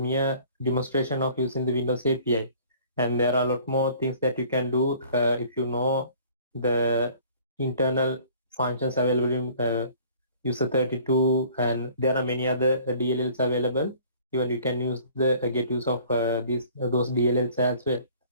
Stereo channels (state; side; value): inverted; both; correlation -0.52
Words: demonstration of using the Windows API, and there are a lot more things that you can do if you know the internal functions available in user 32, and there are many other DLLs available. Even you can use the get use of those DLLs as well,